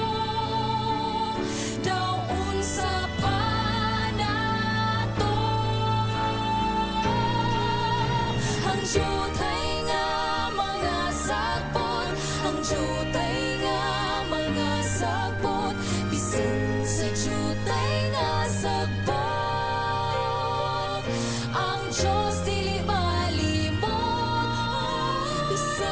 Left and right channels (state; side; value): identical; both; correlation 1.00